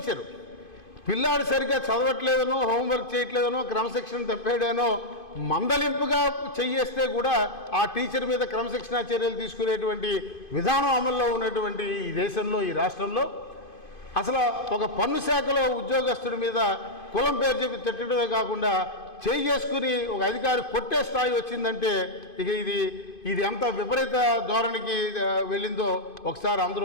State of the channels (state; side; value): late; right; 2.5 ms